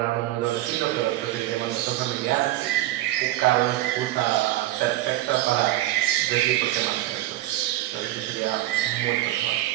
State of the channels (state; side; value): quieter; left; 15.4 dB